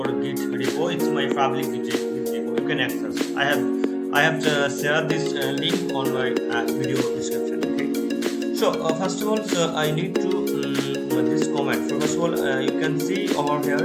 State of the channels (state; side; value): identical; both; correlation 1.00